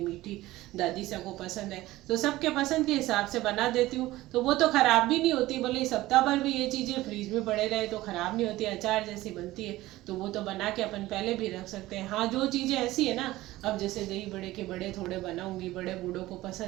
दादी सा को पसंद है, तो सबके पसंद के हिसाब से बना देती हूँ। तो वो तो ख़राब भी नहीं होती, भले सप्ताह भर भी ये चीज़ें फ्रीज में पड़े रहे तो ख़राब नहीं होती, अचार जैसी बनती है। तो वो तो बना के अपन पहले भी रख सकते हैं। हाँ, जो चीज़ें ऐसी है ना, अब जैसे दही बड़े के बड़े थोड़े बनाऊंगी, बड़े बूढ़ों को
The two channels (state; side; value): quieter; left; 17.2 dB